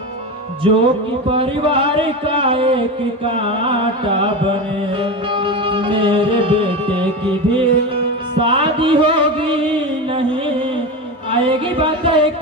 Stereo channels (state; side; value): normal; both; correlation 0.21